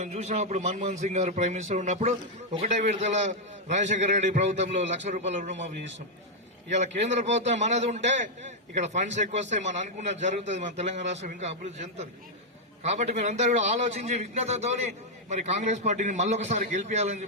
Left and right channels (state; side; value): normal; both; correlation -0.02